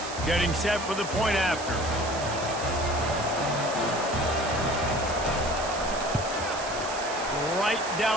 Getting set for the point after. Right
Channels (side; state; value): right; noise; hiss, 10 dB below the sound